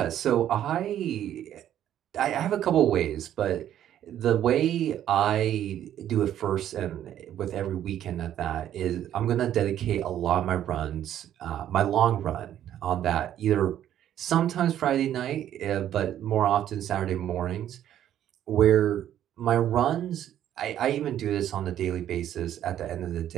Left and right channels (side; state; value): left; quieter; 11.1 dB